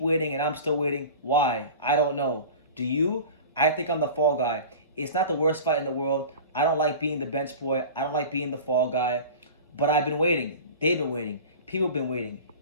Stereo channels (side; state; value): both; inverted; correlation -0.36